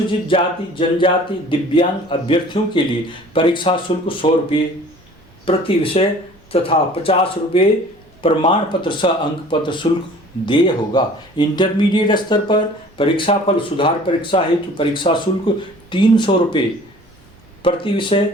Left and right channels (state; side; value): normal; both; correlation 0.48